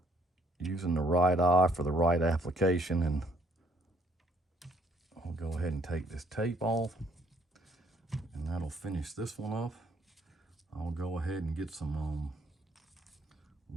using the right eye for the right application. And I'll go ahead and take this tape off, and that'll finish this one up. I'll go ahead and get some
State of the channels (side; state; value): both; normal; correlation 0.65